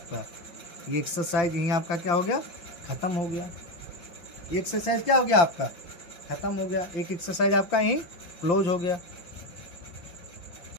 ये एक्सरसाइज यहीं आपका क्या हो गया, खत्म हो गया। एक्सरसाइज क्या हो गया आपका, खत्म हो गया। एक एक्सरसाइज आपका यहीं क्लोज हो गया।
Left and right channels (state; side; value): late; right; 5.8 ms